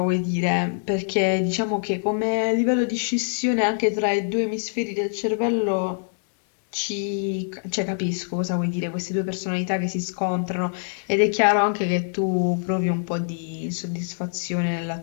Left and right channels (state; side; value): silent; right; digital silence